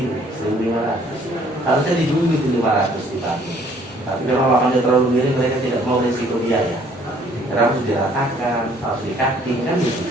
1.500. Harusnya didulu itu 500 dibangun. Tapi kalau lahannya terlalu miring, mereka tidak mau risiko biaya. Karena harus diratakan, harus dikaki, kan gitu.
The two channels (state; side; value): normal; both; correlation 0.60